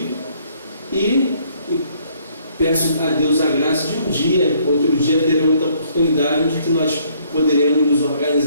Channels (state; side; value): inverted; both; correlation -0.64